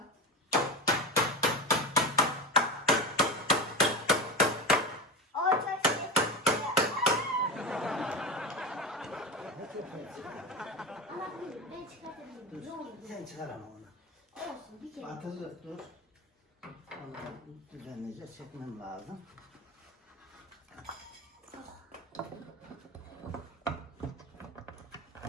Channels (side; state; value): both; normal; correlation 0.23